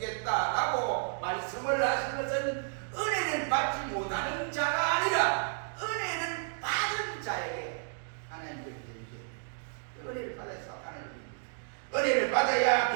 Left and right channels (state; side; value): silent; left; digital silence